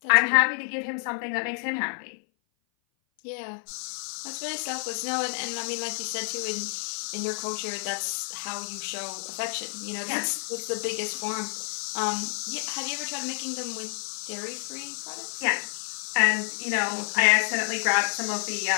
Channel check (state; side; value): silent; right; 56 dB below the other